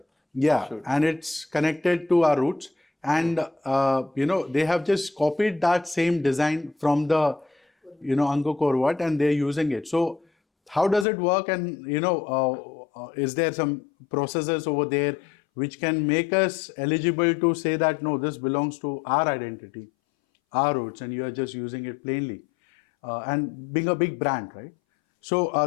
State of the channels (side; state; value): right; drops out; at 11.1 s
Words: and it's connected to our roots, and they have just copied that same design from the Angkor Wat, and they're using it. So how does it work? And is there some processes over there which can make us eligible to say that no, this belongs to our identity, our roots, and you are just using it plainly, and being a big brand, right? So